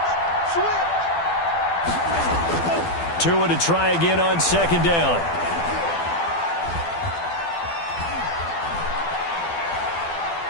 Tua to try again on second down.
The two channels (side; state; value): right; late; 12 ms